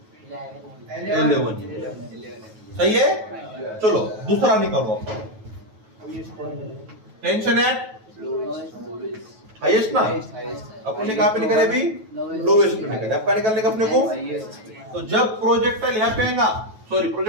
11. सही है. चलो दूसरा निकालो. टेंशन एट हाईएस्ट ना, अपन ने कहां पे निकाले अभी, लोएस्ट पे निकाले. आपका निकालने का अपने को. तो जब प्रोजेक्टाइल यहाँ पे आएगा, सॉरी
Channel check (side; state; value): left; late; 9.2 ms